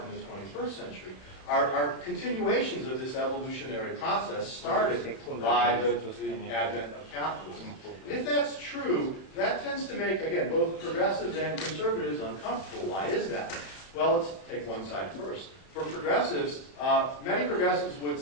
the 21st century are continuations of this evolutionary process started by the advent of capitalism. And if that's true, that tends to make, again, both progressives and conservatives uncomfortable. Why is that? Well, let's take one side first. For progressives, many progressives would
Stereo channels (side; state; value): right; late; 32 ms